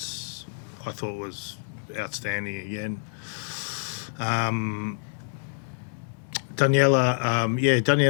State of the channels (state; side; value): silent; right; 60 dB below the other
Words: I thought, was outstanding again.